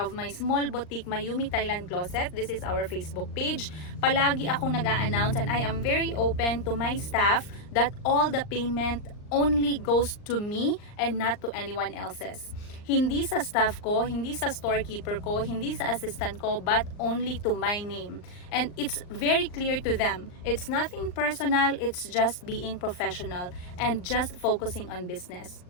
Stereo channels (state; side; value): late; right; 39 ms